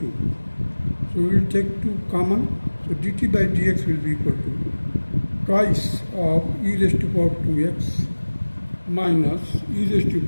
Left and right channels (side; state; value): both; inverted; correlation -1.00